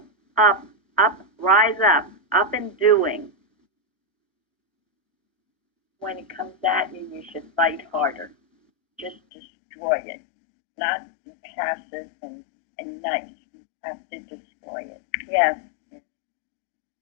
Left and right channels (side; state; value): right; drops out; at 9.2 s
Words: up, rise up and doing. When it comes at you, you should fight harder. Just destroy it. Not be passive and nice. You have to destroy it. Yes.